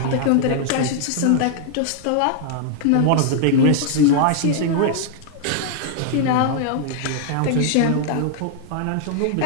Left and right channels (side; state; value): both; different; correlation 0.00